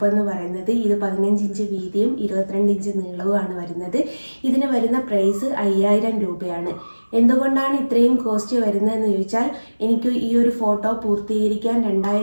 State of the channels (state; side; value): inverted; both; correlation -1.00